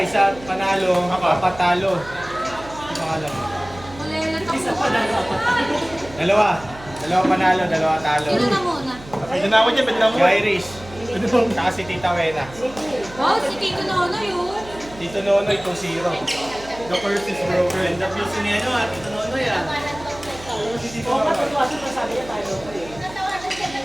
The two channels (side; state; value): right; noise; hum, 18 dB below the sound